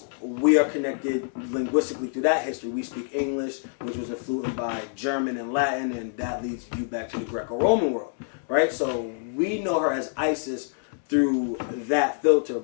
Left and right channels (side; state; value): right; silent; digital silence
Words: we are connected linguistically through that history. We speak English, which was influenced by German and Latin, and that leads you back to the Greco-Roman world, right? So we know her as Isis through that filter,